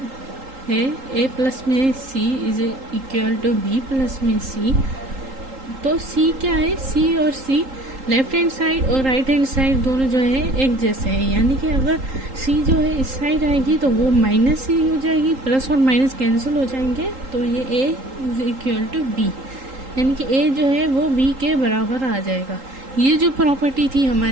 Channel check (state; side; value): late; left; 3.8 ms